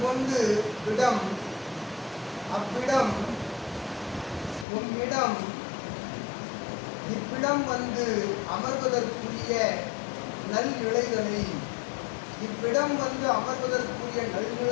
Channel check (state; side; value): drops out; right; at 4.7 s